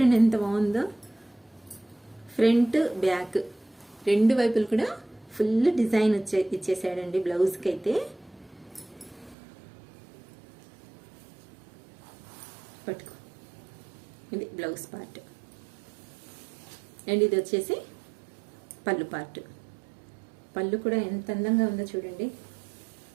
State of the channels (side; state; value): left; drops out; at 9.3 s